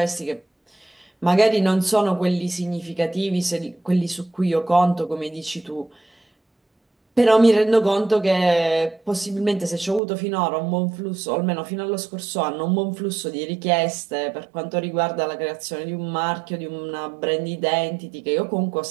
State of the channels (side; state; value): left; drops out; at 10.0 s